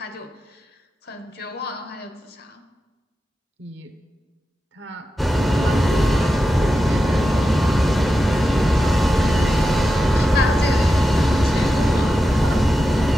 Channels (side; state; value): both; normal; correlation 0.91